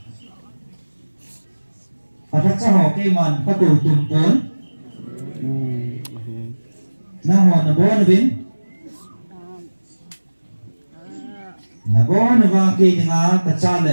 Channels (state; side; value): inverted; both; correlation -1.00